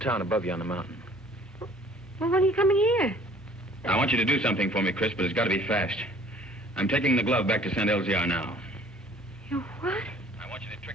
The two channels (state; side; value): normal; both; correlation 0.54